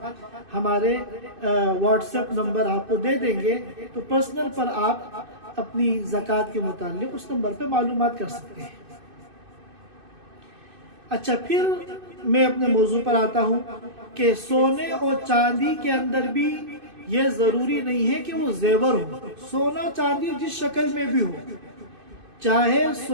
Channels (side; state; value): left; late; 2.5 ms